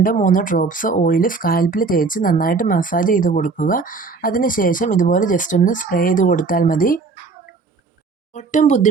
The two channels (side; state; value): left; quieter; 4.4 dB